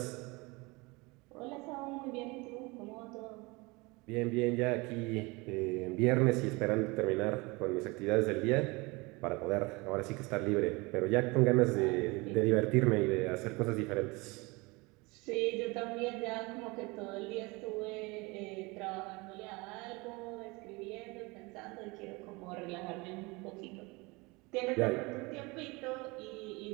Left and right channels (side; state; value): left; quieter; 25.4 dB